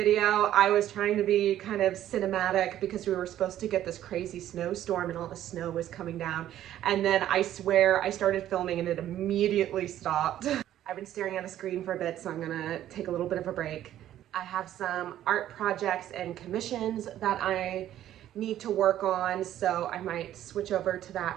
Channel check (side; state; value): left; quieter; 12.2 dB